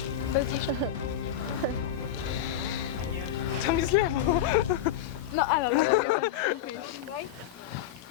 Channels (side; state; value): right; quieter; 10.2 dB